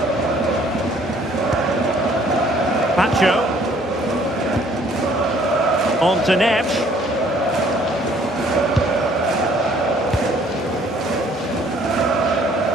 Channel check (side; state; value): both; normal; correlation 0.59